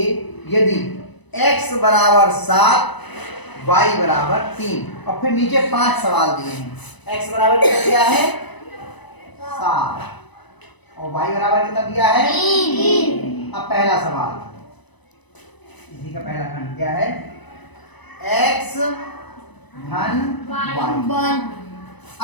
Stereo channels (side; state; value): right; late; 1.0 ms